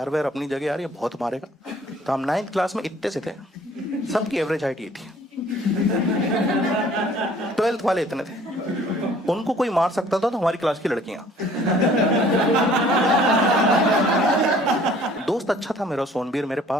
व्यार अपनी जगह यार, ये बहुत मारेगा। तो हम 9th क्लास में इतने से थे, सबकी एवरेज हाइट ये थी। 12th वाले इतने थे, उनको कोई मार सकता था तो हमारी क्लास की लड़कियां। दोस्त अच्छा था मेरा, सोनबीर, मेरे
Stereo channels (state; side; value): normal; both; correlation 0.55